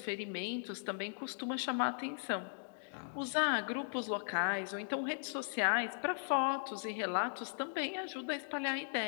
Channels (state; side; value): silent; right; digital silence